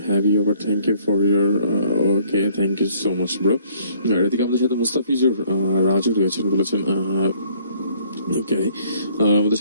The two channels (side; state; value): both; inverted; correlation -0.60